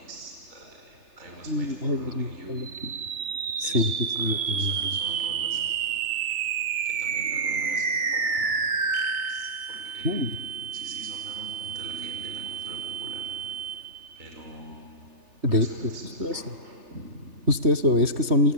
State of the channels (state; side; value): late; left; 3.3 ms